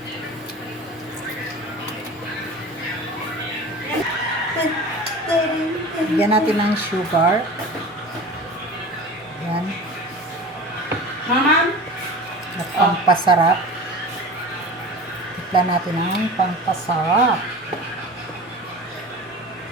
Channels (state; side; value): normal; both; correlation 0.35